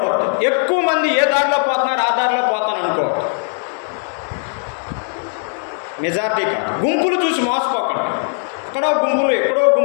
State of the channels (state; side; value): silent; right; 55 dB below the other